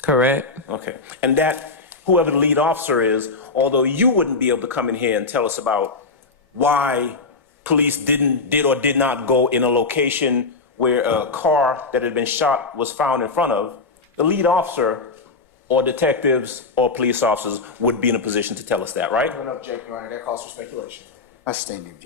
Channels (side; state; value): right; quieter; 4.1 dB